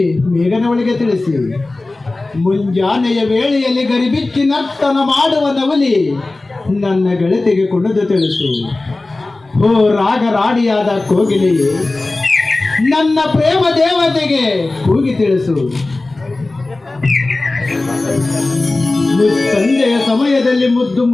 ಮೇಘನವಳಿಗೆ ತಿಳಿಸಿ. ಮುಂಜಾನೆಯ ವೇಳೆಯಲ್ಲಿ ಗರಿಬಿಚ್ಚಿ ನರ್ತನ ಮಾಡುವ ನವಲಿ ನನ್ನ ಗೆಳತಿಗೆ ಕುಣಿದು ತಿಳಿಸು. ಓ ರಾಗರಾಡಿಯಾದ ಕೋಗಿಲೆಯೇ, ನನ್ನ ಪ್ರೇಮ ದೇವತೆಗೆ ಕೂಗಿ ತಿಳಿಸು. ಸಂಜೆಯ ಸಮಯದಲ್ಲಿ ಮುದ್ದು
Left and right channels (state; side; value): quieter; right; 3.1 dB